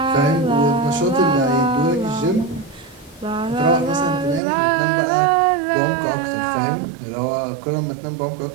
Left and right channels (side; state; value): left; drops out; at 4.4 s